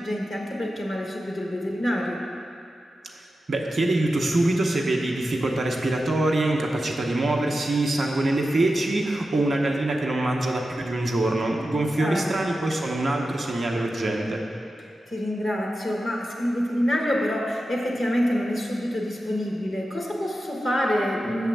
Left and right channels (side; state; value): both; normal; correlation 0.92